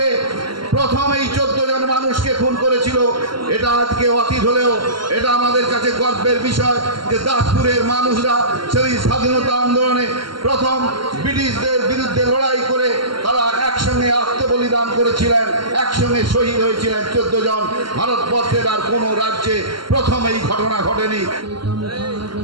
প্রথম এই 14 জন মানুষকে খুন করেছিল। এটা আজকে অতীত হলেও এটা আমাদের কাছে গর্বের বিষয় যে দাসপুরের মানুষরা সেই স্বাধীনতা আন্দোলনে প্রথম ব্রিটিশদের বিরুদ্ধে লড়াই করে তারা একসঙ্গে আত্মবলিদান করেছিলেন, একসঙ্গে শহীদ হয়েছিলেন 14 জন। ভারতবর্ষের আর কোনো রাজ্যে প্রথম এই ঘটনা ঘটেনি।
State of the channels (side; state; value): left; late; 0.72 ms